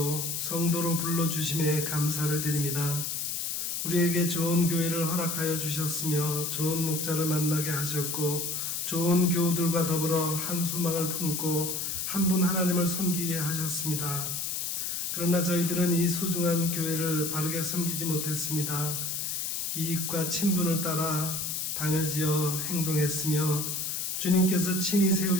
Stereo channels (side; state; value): left; noise; hiss, 2 dB below the sound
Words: 성도로 불러주심에 감사를 드립니다. 우리에게 좋은 교회를 허락하여 주셨으며 좋은 목자를 만나게 하셨고 좋은 교우들과 더불어 한 소망을 품고 한 분 하나님을 섬기게 하셨습니다. 그러나 저희들은 이 소중한 교회를 바르게 섬기지 못했습니다. 이익과 친분을 따라 당을 지어 행동했으며 주님께서 친히